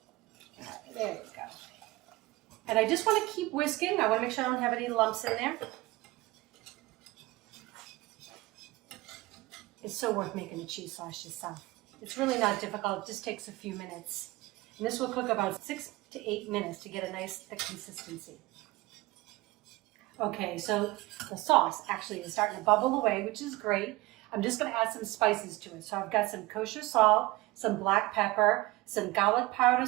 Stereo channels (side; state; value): left; quieter; 20.3 dB